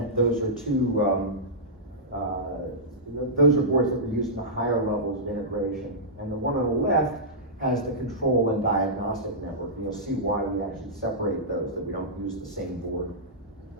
Those are those are boards that were used in the higher levels of integration. And the one on the left has the control and diagnostic network. And you'll see why we actually separate those, that we don't use the same board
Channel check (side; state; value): both; normal; correlation -0.14